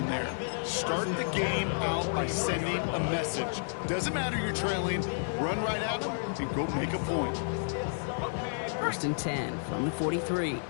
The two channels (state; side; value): silent; right; digital silence